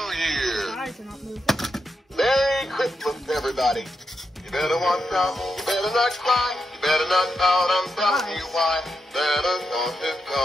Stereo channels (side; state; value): both; normal; correlation 0.85